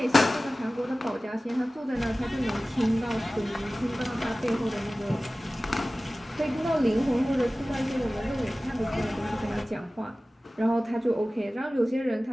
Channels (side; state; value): both; normal; correlation 0.97